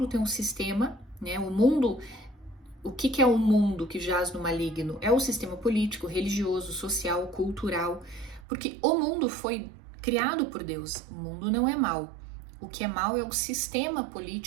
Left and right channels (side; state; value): left; drops out; at 8.5 s